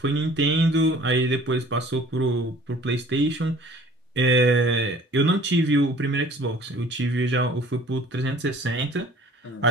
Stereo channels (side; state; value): both; normal; correlation 0.50